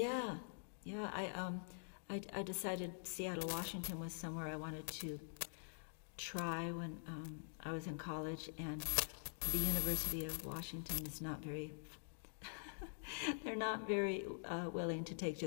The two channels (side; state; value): right; silent; digital silence